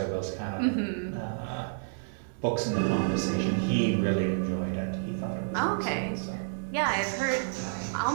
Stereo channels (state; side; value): silent; left; digital silence